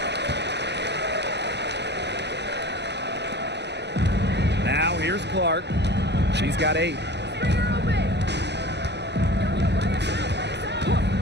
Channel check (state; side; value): late; left; 0.50 ms